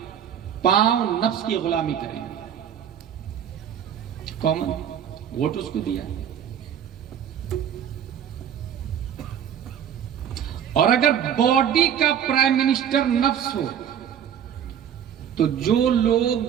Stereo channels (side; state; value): left; quieter; 9.1 dB